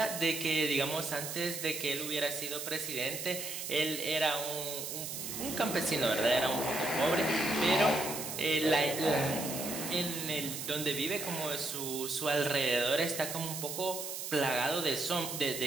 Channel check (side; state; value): right; noise; hiss, 6 dB below the sound